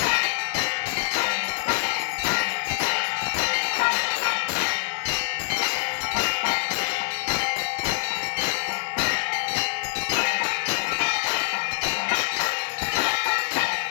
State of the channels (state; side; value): silent; right; digital silence